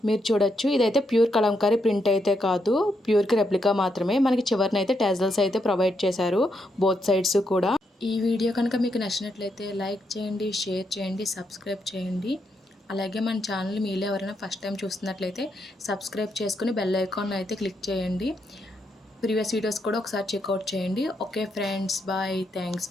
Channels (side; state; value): both; normal; correlation 0.80